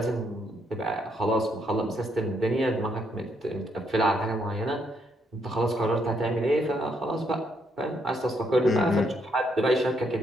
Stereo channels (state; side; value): normal; both; correlation 0.74